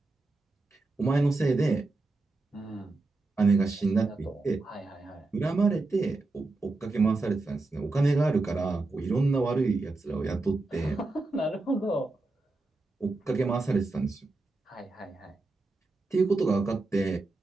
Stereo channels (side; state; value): left; quieter; 3.3 dB